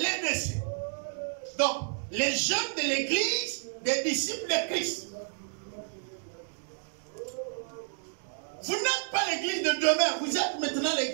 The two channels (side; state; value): left; silent; digital silence